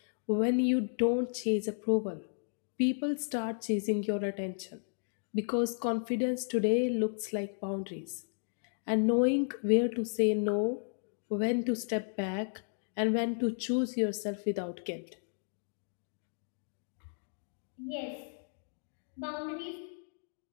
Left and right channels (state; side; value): silent; right; digital silence